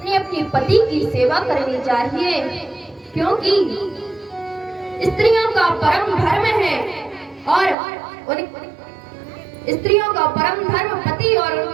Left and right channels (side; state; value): left; drops out; at 7.8 s